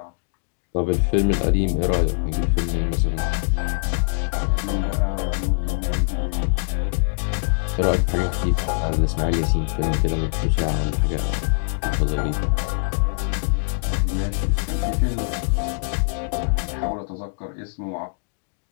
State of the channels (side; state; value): right; silent; digital silence